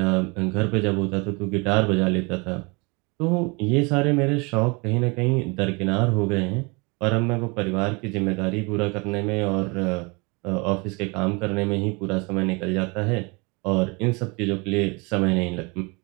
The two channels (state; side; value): quieter; left; 28.6 dB